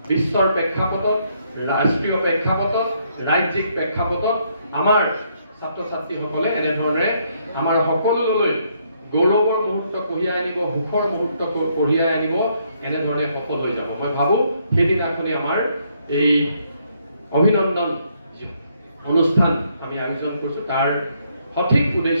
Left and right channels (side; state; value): both; inverted; correlation -0.72